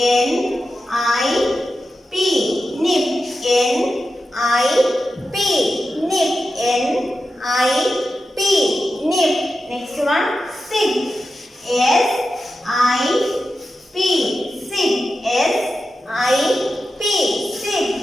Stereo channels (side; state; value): both; normal; correlation 0.91